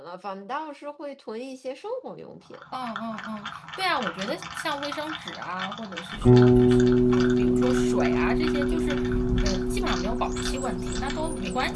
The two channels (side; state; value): both; identical; correlation 1.00